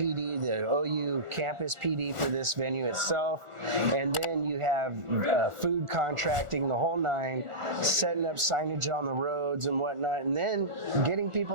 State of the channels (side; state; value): left; late; 1.4 ms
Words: the OU campus PD for this venue itself, and then you have food contracting, the whole nine, setting up signage on the roads and whatnot, and then getting